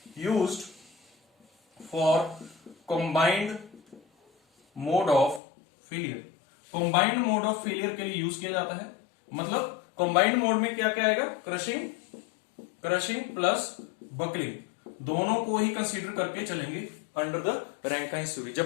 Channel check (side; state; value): right; drops out; at 5.4 s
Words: used for combined mode of failure. Combined mode of failure के लिए यूज किया जाता है, मतलब कंबाइंड मोड में क्या क्या आएगा, क्रशिंग प्लस बकलिंग, दोनों को ही कंसीडर करके चलेंगे अंडर द रैंकाइन्स थ्योरी।